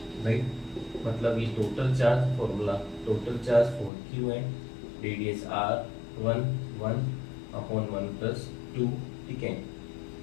right. मतलब ये total charge formula, total charge 4Q है, रेडियस R1 1 अपॉन 1 प्लस 2, ठीक है।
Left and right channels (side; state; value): right; drops out; at 3.9 s